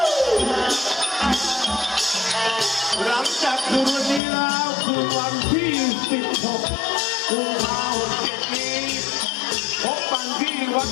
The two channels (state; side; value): drops out; right; at 4.2 s